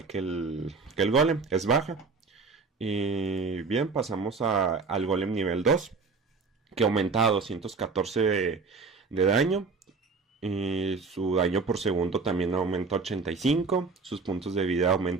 el golem, es baja. Y bien, pasamos al golem nivel 2, que aumenta a 214 de daño. Y su daño por segundo también aumenta a 85. Sus puntos de vida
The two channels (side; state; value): left; quieter; 4.5 dB